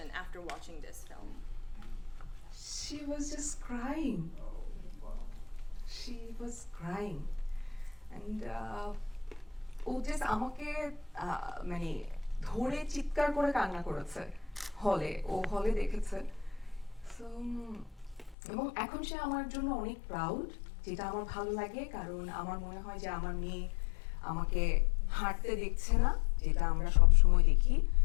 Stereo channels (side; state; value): right; drops out; at 18.4 s